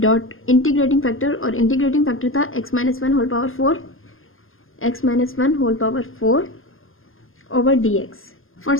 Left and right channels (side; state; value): right; late; 0.60 ms